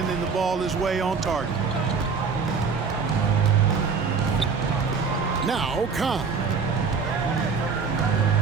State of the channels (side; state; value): left; quieter; 5.4 dB